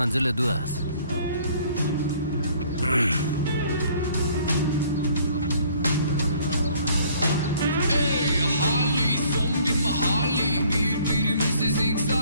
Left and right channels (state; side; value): inverted; both; correlation -0.58